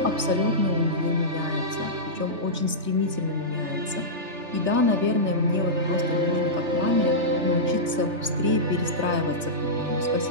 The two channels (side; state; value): left; late; 3.3 ms